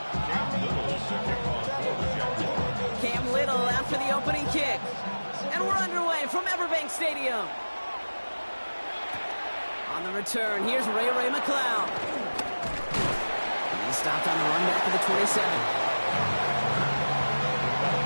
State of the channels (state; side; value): inverted; both; correlation -1.00